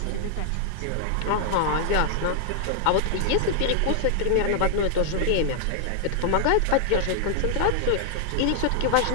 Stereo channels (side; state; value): both; different; correlation 0.00